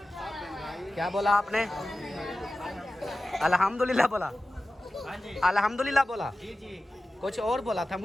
क्या बोला आपने? अल्हम्दुलिल्लाह बोला? अल्हम्दुलिल्लाह बोला? कुछ और बोला था,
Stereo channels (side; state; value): both; normal; correlation 0.95